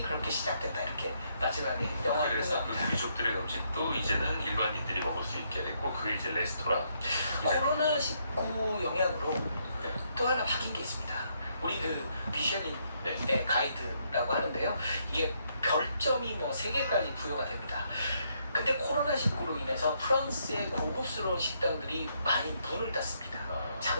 그렇게 시작됐다. 이렇게 마지막에 영화가 그래서 그 끝납니다. 귀족들의 음식도 이제는 일반인들이 먹을 수 있게 됐고 그게 이제 레스토랑. 코로나19 영향으로 또 하나 바뀐 게 있습니다. 우리 그 미쉐린의 네. 가이드라고 하는데요. 이게 별점이 뭐 3개까지 부여가 됩니다. 근데 코로나19로 인해서 프랑스의 고급스러운 식당들이 많이 문을 닫습니다.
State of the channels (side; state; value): both; inverted; correlation -0.74